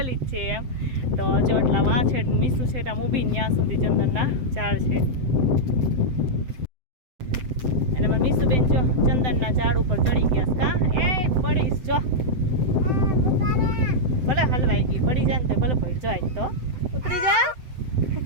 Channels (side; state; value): left; late; 7.8 ms